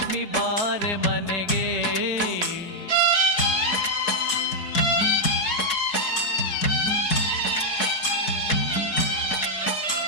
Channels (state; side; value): late; right; 4.7 ms